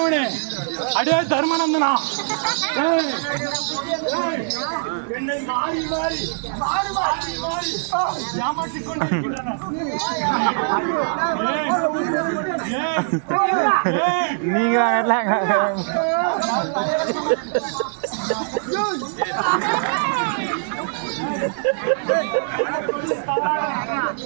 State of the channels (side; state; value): left; silent; 63 dB below the other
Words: அடே தர்மநந்தனா, என்னை மாறி மாறி மாறி மாறி மாறி ஏமாற்றிக் கொண்டிருக்கின்றன. நீங்க